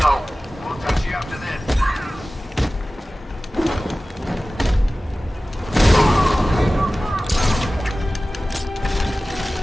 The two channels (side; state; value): both; normal; correlation 0.97